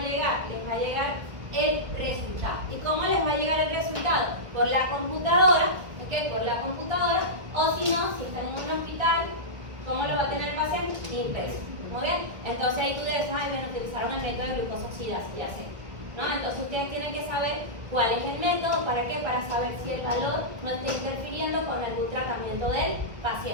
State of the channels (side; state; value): left; late; 1.2 ms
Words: Les va a llegar el resultado. ¿Y cómo les va a llegar el resultado? Por la computadora, ¿ok? Por la computadora, o si no, si están en un hospital, ¿cómo lo va a tener el paciente? Impreso. Muy bien. Entonces ahí tú debes, utilizaron el método de glucosa oxidasa, ya sé. ¿No? Entonces ustedes tienen que saber cuál es el método, ¿para qué? Para saber si el valor no está interfiriendo con algún tratamiento del